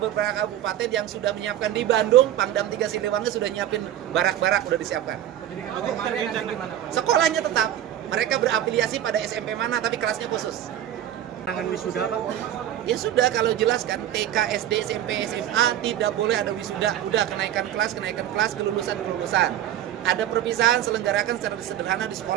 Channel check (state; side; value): quieter; left; 11.5 dB